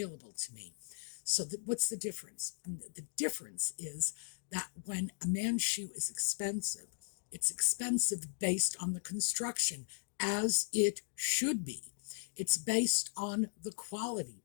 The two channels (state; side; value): silent; right; digital silence